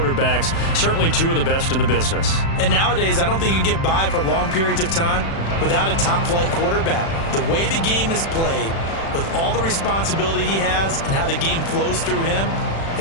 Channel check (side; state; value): right; late; 36 ms